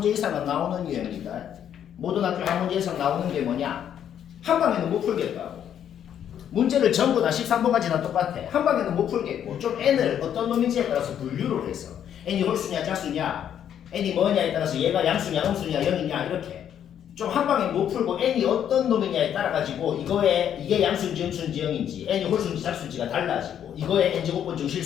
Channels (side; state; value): right; quieter; 9.5 dB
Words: 이상은 나오는 유형이다. 모든 학교에 한 문제 이상 나오는 게 뭐냐? 한 방에는 못 풀겠다고. 문제를 전부 다 13번까지 다 똑같아. 한 방에는 못 풀겠고 좀 n을 어떤 놈인지에 따라서 분류를 해서 n이 홀수냐 짝수냐, n이 뭐냐에 따라서 얘가 양수냐 음수냐 0이냐 이렇게 좀 한 방에 못 풀고 n이 어떤 놈이냐에 따라 가지고 이게 양수인지 음수인지 0인지 n이 홀수인지 짝수인지가 달라지고 이거의 n제곱번 중